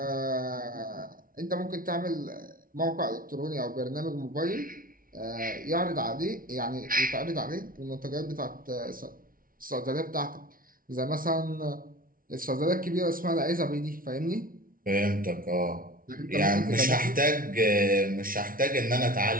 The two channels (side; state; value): left; late; 0.41 ms